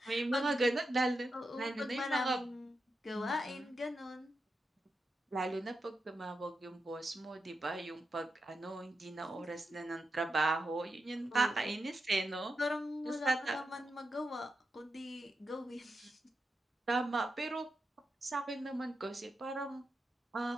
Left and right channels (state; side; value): normal; both; correlation 0.87